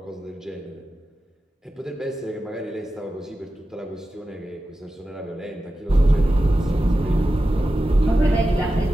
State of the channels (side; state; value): both; normal; correlation 0.92